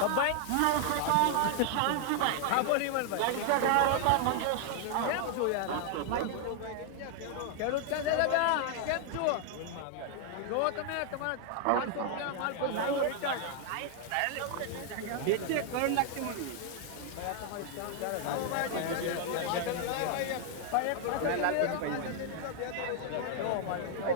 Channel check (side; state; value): both; different; correlation 0.00